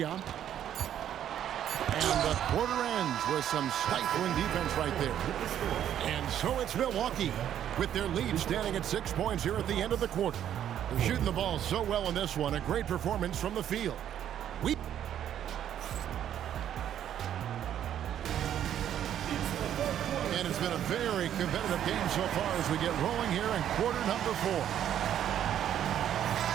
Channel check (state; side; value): quieter; left; 10.4 dB